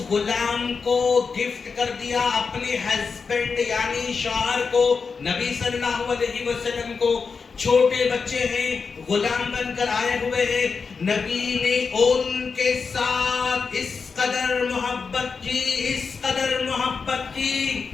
غلام کو گفٹ کر دیا اپنے ہسبینڈ یعنی شوہر کو، نبی صلی اللہ علیہ وسلم کو. چھوٹے بچے ہیں، غلام بن کر آئے ہوئے ہیں. نبی نے ان کے ساتھ اس قدر محبت کی، اس قدر محبت کی،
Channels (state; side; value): quieter; right; 5.2 dB